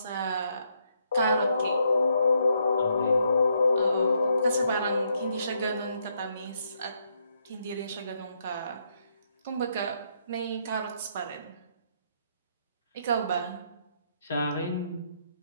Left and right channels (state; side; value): inverted; both; correlation -0.75